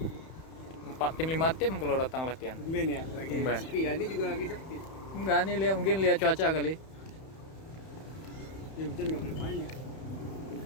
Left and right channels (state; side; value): late; right; 31 ms